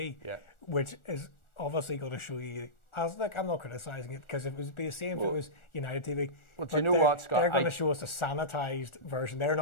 which is obviously going to show you. I'm not criticising it, because it would be the same if it was United TV. Well, do you know what, Scott? They're going to show us a sanitised version. They're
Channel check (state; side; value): late; right; 1.4 ms